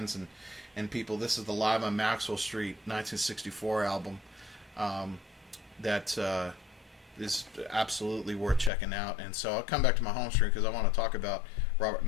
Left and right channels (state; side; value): drops out; right; at 8.7 s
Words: and people. This is the Live on Maxwell Street 1964 album that is absolutely worth checking out. And so I'll come back to my home stream because I want to talk about Robert